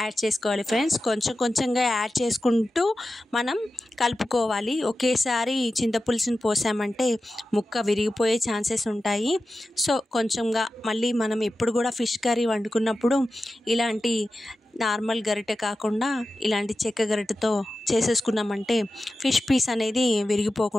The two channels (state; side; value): normal; both; correlation 0.93